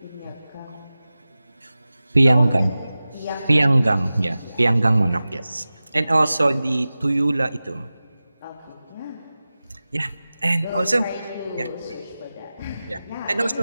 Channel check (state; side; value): inverted; both; correlation -0.96